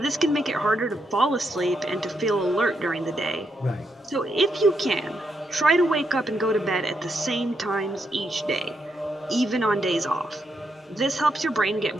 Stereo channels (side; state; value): both; normal; correlation 0.80